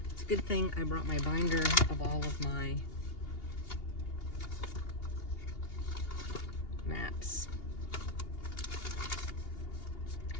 it's a good thing I brought my binder of all of my maps.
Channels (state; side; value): late; right; 2.8 ms